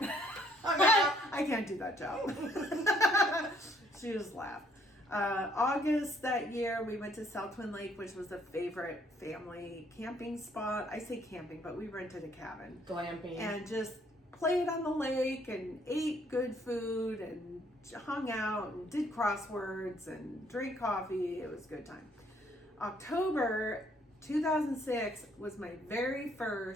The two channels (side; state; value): both; normal; correlation 0.65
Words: I can't do that job. She just laughed. August that year, we went to South Twin Lake, which was a favorite family camping spot. I say camping, but we rented a cabin. Glamping. And just played on the lake and ate good food and hung out and did crosswords and drank coffee. It was a good time. October 2006 was my very